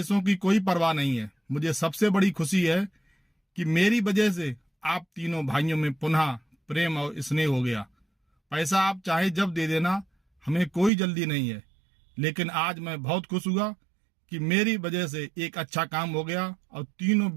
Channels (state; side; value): drops out; left; at 10.9 s